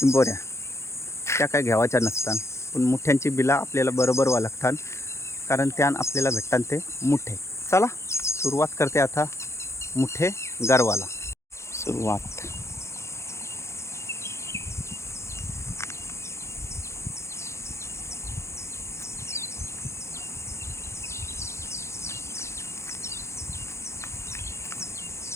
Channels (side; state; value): right; late; 0.13 ms